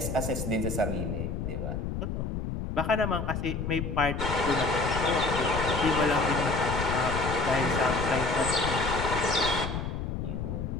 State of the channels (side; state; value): left; noise; rumble, 3 dB below the sound